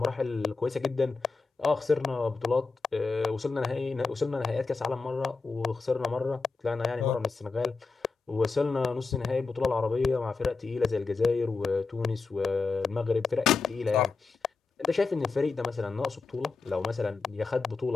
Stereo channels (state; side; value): quieter; right; 4.3 dB